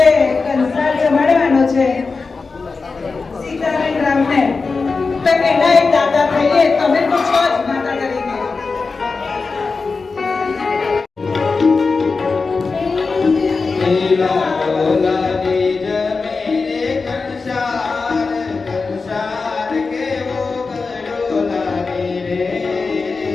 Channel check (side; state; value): right; quieter; 4.3 dB